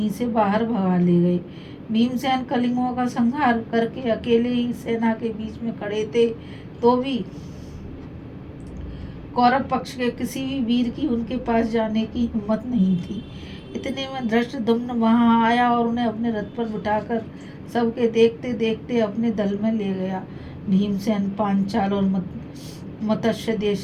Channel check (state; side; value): identical; both; correlation 1.00